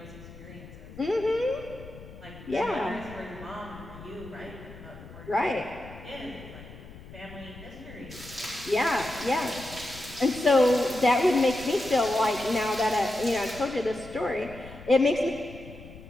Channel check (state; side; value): noise; left; rumble, 16 dB below the sound